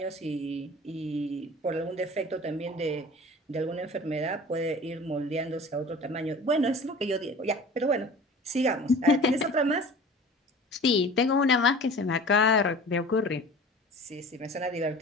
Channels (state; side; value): normal; both; correlation 0.42